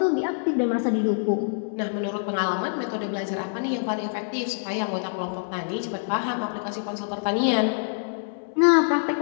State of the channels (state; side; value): silent; right; 61 dB below the other